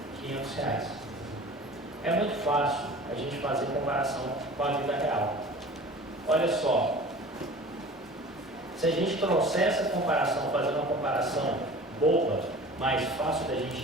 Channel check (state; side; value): normal; both; correlation 0.41